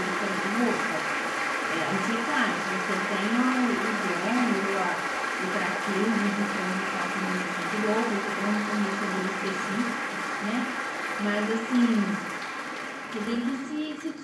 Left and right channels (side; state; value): both; identical; correlation 1.00